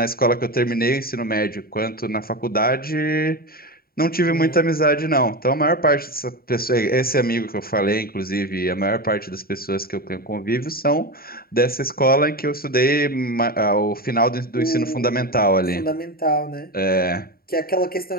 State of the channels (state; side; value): late; right; 0.43 ms